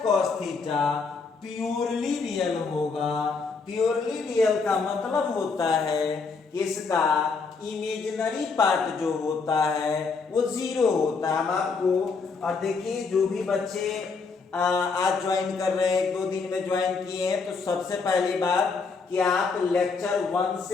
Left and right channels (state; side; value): quieter; right; 4.7 dB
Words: cos theta purely real होगा। प्योरली रियल का मतलब होता है कि इसका इमेजिनरी पार्ट जो होता है वो 0 होता है। हम आपको, और देखिए जो भी बच्चे आज ज्वाइन कर रहे हैं, 2 दिन में ज्वाइन किए हैं, तो सबसे पहली बात कि आप लेक्चर 1